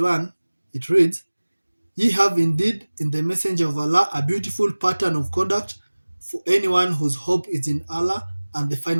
it reads, Ye have indeed in the messenger of Allah a beautiful pattern of conduct for anyone whose hope is in Allah and the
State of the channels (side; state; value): both; inverted; correlation -1.00